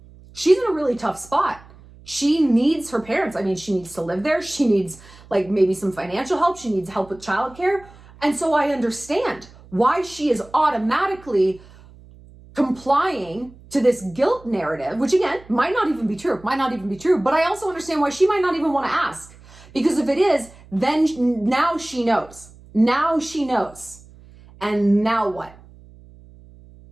she's in a really tough spot. She needs her parents. I mean, she needs to live there. She needs like maybe some financial help. She needs help with childcare. And so I understand why she is automatically complying to this guilt narrative, which again, might not even be true. But I also understand why she might not even want to ask. Because if it is, then now she knows. And now what?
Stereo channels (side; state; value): right; noise; hum, 23 dB below the sound